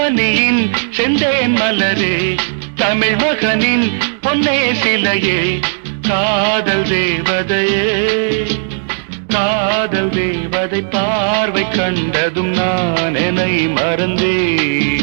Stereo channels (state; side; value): silent; left; digital silence